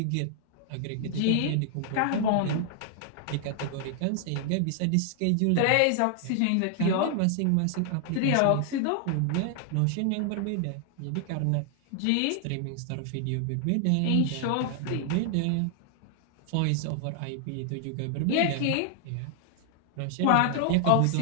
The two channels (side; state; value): both; different; correlation 0.00